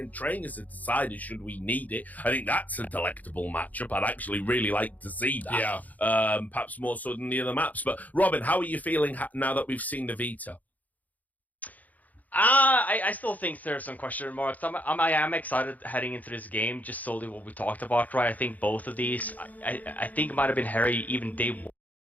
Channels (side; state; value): right; late; 0.078 ms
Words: trainers have decided, should we need it? I think that's a delectable matchup. I'd actually really like to see that. Yeah. Perhaps more so than the other maps. But Robin, how are you feeling now that we've seen the Vita? I still think there's some question marks. I am excited heading into this game, just solely what we talked about, right? I think both of these, I think it might have been Harry even day